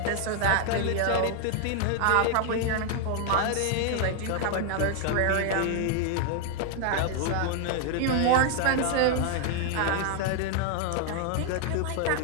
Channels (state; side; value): different; both; correlation 0.00